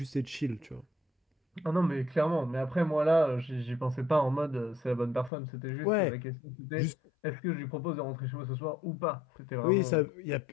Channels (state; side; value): drops out; right; at 5.3 s